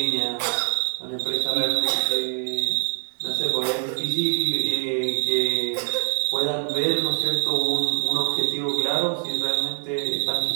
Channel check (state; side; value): silent; left; digital silence